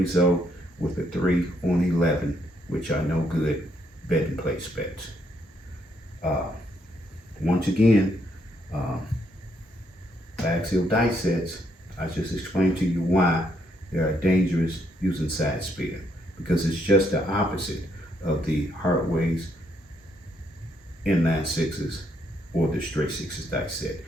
with a 3 on 11, which are no good betting place bets. Once again, axial die sets, I just explained to you why they are dangerous using side spear, because it's just the opposite of the hard weights, inline sixes, or the straight sixes die set.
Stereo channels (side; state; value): both; normal; correlation 0.74